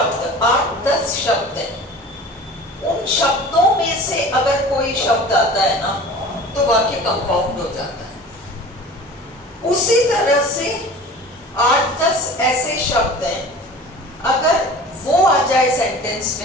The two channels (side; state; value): both; normal; correlation 0.40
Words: 8-10 शब्द है, उन शब्दों में से अगर कोई शब्द आता है ना तो वाक्य कंपाउंड हो जाता है। उसी तरह से 8-10 ऐसे शब्द हैं, अगर वो आ जाए सेंटेंस